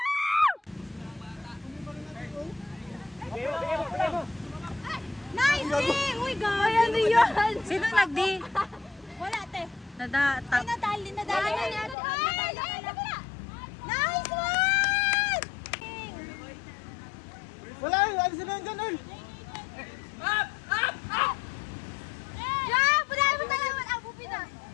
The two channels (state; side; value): drops out; right; at 12.0 s